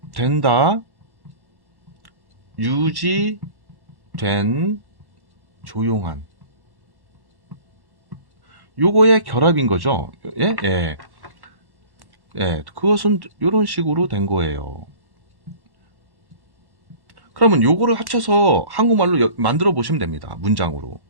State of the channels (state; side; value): late; left; 1.1 ms